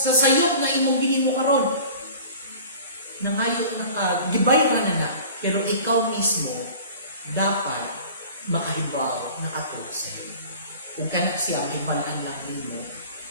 sayop na imong bilhin mo karon? Nangayon gibay na, pero ikaw mismo dapat makahibaw nakatulog sa iyo. Kung kana siya mahibalaan lang nimo,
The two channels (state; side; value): inverted; both; correlation -0.43